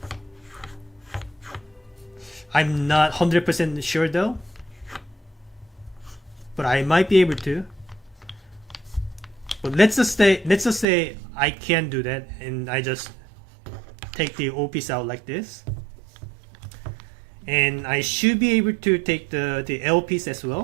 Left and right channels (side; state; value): left; drops out; at 10.9 s